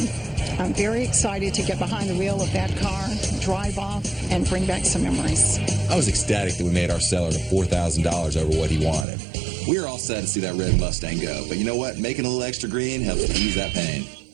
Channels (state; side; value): drops out; left; at 9.1 s